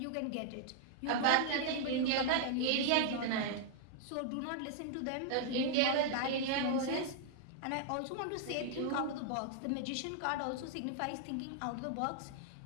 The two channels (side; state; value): both; different; correlation -0.01